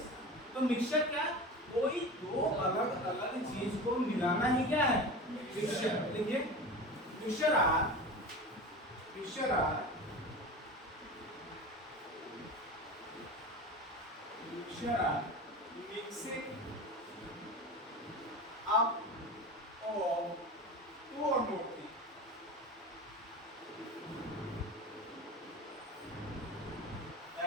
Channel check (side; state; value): both; normal; correlation 0.30